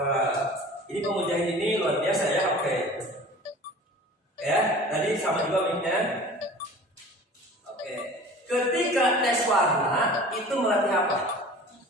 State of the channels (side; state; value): both; normal; correlation 0.42